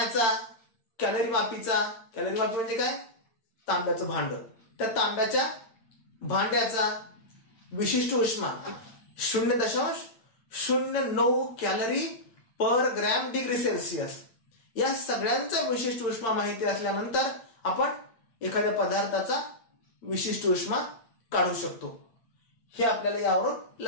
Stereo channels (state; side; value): late; right; 8.9 ms